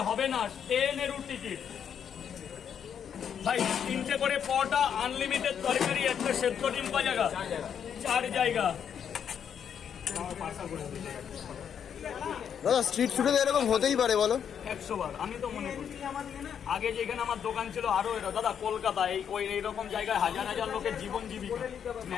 হবে না ট্রেনেরও টিকিট। ভাই 3টে করে পরোটা, আনলিমিটেড তরকারি, একটা সেদ্ধ ডিম জায়গা 4 জায়গা। দাদা স্ট্রিট ফুডে এরকম হতেই পারে বলো? 100 বার আমি তো মনে করি। আগে যেখানে আমার দোকান ছিল আরো এরা দাদা কলকাতা এইরকম জায়গায় হাজার হাজার লোকের জীবন জীবিকা,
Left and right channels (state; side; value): quieter; right; 8.1 dB